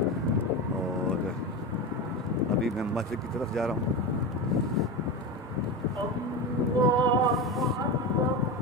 और अभी मैं मस्जिद की तरफ जा रहा हूँ।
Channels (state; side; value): normal; both; correlation 0.21